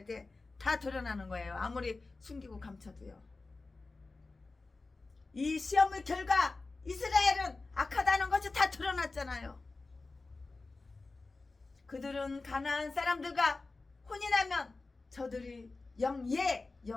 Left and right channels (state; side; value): quieter; right; 3.6 dB